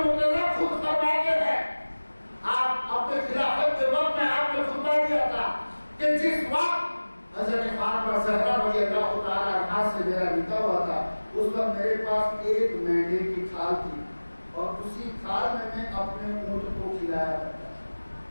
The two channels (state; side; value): inverted; both; correlation -1.00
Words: خود فرماتے ہیں, آپ اپنے خلافت کے وقت میں آپ نے خطبہ دیا تھا کہ جس وقت حضرت فاطمہ زہرا رضی اللہ تعالیٰ عنہا سے میرا نکاح ہوا تھا اس وقت میرے پاس ایک مینڈے کی کھال تھی اور اسی کھال میں اپنے اونٹ کو کھلایا کرتا تھا.